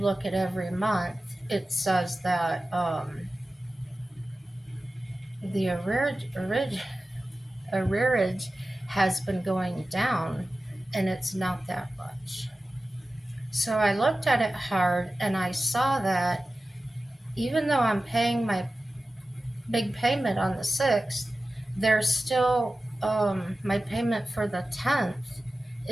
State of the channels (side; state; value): both; normal; correlation 0.95